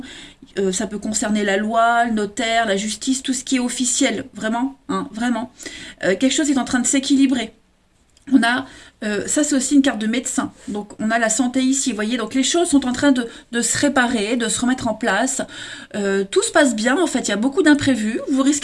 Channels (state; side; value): identical; both; correlation 1.00